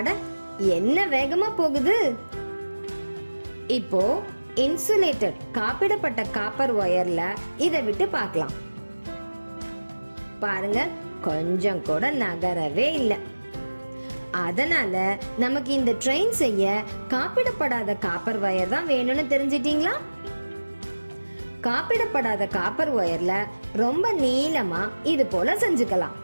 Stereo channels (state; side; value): inverted; both; correlation -1.00